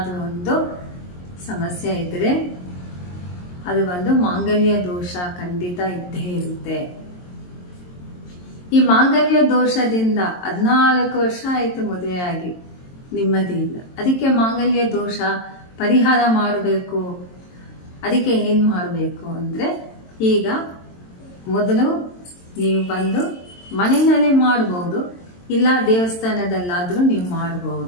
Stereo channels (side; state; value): right; late; 22 ms